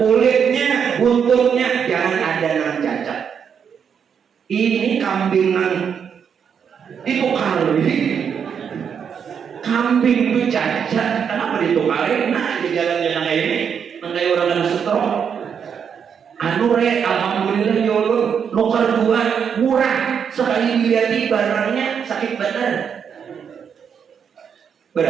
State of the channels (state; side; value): quieter; left; 7.3 dB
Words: buntutnya, jangan ada nang cacat. Ini kambingan ditukar ini. Kambing itu cacat, kenapa ditukarin? Nah di jalan-jalan kayak ini, kayak orang yang stroke. Anu re, alhamdulillah yolo, lokal 2 murah. Sekali dilihat barangnya sakit badan.